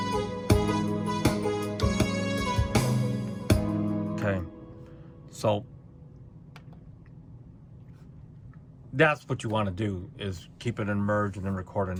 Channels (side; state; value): both; identical; correlation 1.00